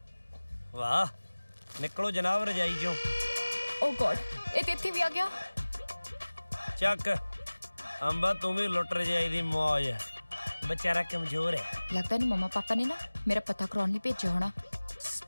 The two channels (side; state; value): both; inverted; correlation -1.00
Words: ਵਾਹ ਨਿਕਲੋ ਜਨਾਬ ਰਜਾਈ ਚੋਂ। ਓ ਗॉड, ਇਹ ਤੇ ਇੱਥੇ ਵੀ ਆ ਗਿਆ। ਚੱਕ ਅੰਬਾ, ਤੂੰ ਵੀ ਲੁੱਟ ਰਜਾਈ ਦੀ ਮੌਜ। बेचारा कमजोर है। लगता नहीं मम्मा पापा ने ना मेरा पता करवाने लिए भेजा होना।